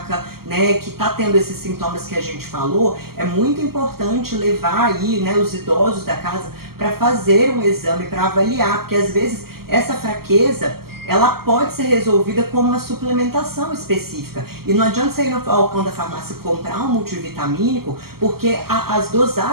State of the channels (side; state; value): left; late; 0.94 ms